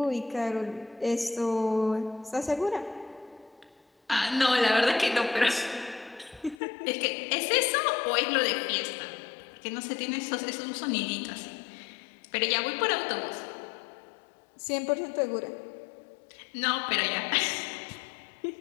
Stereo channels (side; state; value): right; drops out; at 6.6 s